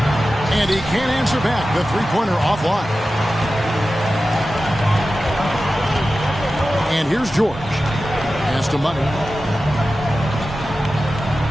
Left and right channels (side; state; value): both; normal; correlation 0.94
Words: And he can't answer back. The three-pointer offline. And here's George. Pass to Money.